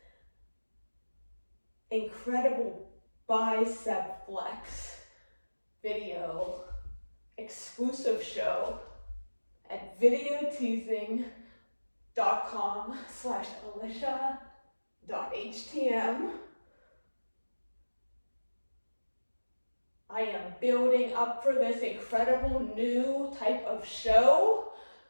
bicep flex video exclusive show at videoteasing.com/alicia.htm. I am building up for this incredible new type of show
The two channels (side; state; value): both; inverted; correlation -1.00